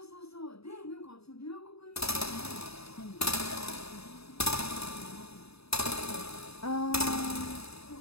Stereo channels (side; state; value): right; late; 0.78 ms